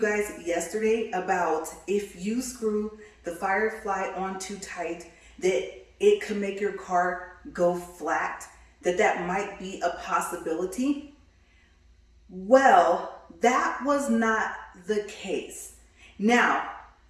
yesterday about if you screw the firefly on too tight that it could make your car go flat, that might be a possibility? Well, that was not the case. Now,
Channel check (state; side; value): identical; both; correlation 1.00